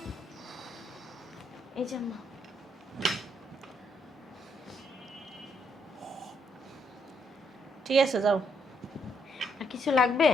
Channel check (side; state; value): both; normal; correlation 0.74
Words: এই যে আম্মা। ঠিক আছে যাও। আর কিছু লাগবে?